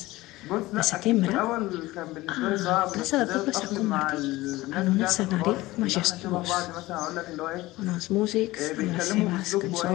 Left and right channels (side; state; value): right; quieter; 18.8 dB